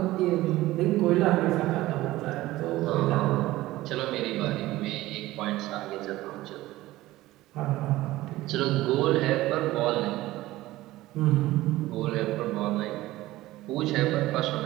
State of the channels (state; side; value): quieter; left; 17.1 dB